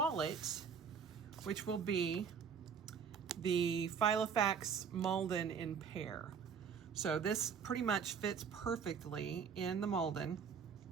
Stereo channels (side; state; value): left; quieter; 6.6 dB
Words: which will be the Filofax Malden in Pear. So this pretty much fits perfectly in the Malden.